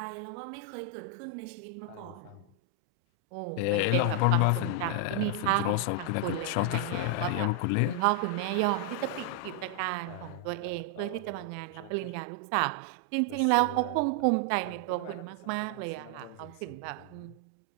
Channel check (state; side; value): different; both; correlation 0.00